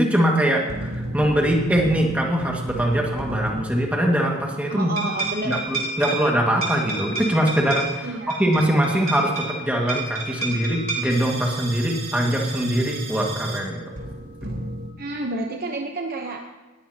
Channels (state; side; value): normal; both; correlation 0.70